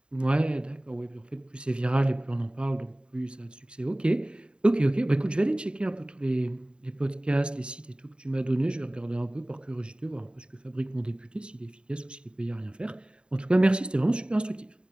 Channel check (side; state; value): left; late; 0.051 ms